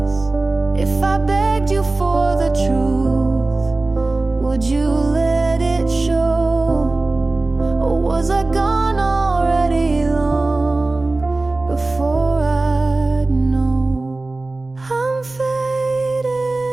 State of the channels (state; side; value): quieter; left; 3.2 dB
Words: If I begged you for the truth, would you let it show? Or was I gone already long before I'd know? I'm